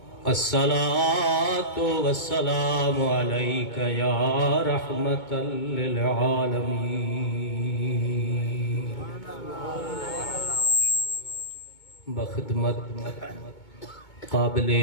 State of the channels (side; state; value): right; late; 2.2 ms